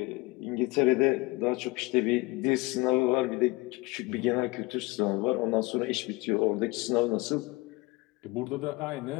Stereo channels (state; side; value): quieter; right; 23.7 dB